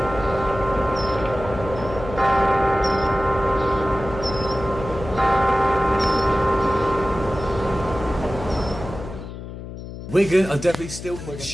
Wigan are definitely still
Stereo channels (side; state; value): left; noise; hum, 11 dB below the sound